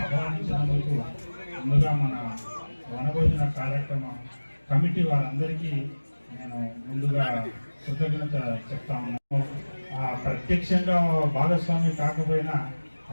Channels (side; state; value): both; inverted; correlation -1.00